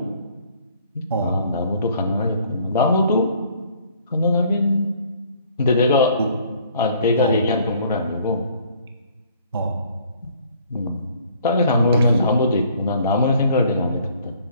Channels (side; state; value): both; inverted; correlation -0.59